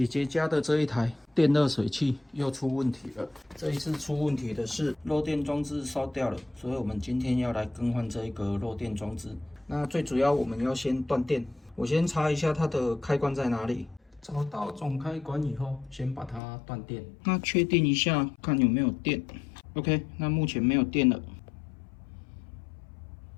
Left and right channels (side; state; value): right; drops out; at 16.4 s